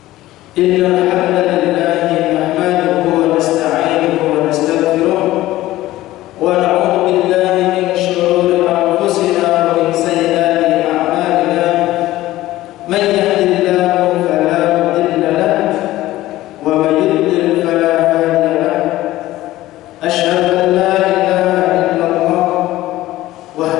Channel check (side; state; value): right; quieter; 16.1 dB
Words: Innal hamdalillah nahmaduhu wa nasta'inuhu wa nastaghfiruh wa na'udzu billahi min shururi anfusina wa min sayyiati a'malina. Man yahdihillahu fala mudilla lahu wa man yudlil fala hadiya lahu. أشهد أن لا إله إلا الله